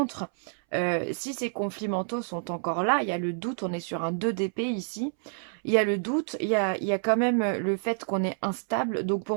si ces conflits mentaux sont encore là, il y a le doute, on est sur un 2 d'épée ici, il y a le doute, il y a quand même le fait qu'on est instable. Donc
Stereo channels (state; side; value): silent; left; 59 dB below the other